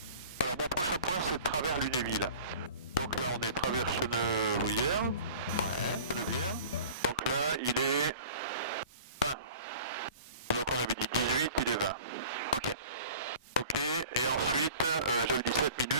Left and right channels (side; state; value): both; inverted; correlation -0.44